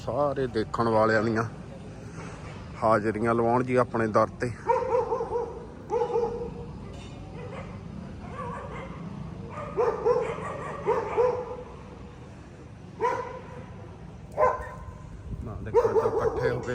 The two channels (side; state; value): both; identical; correlation 1.00